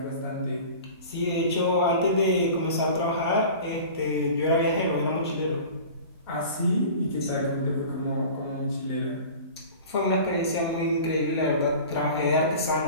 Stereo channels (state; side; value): inverted; both; correlation -0.39